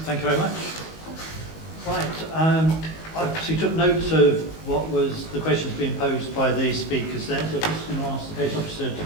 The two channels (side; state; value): right; late; 19 ms